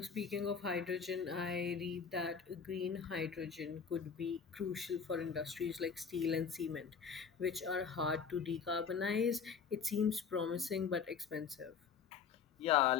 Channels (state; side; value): quieter; right; 6.2 dB